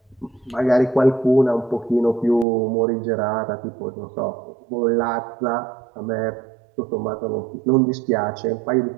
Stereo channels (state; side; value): drops out; left; at 2.5 s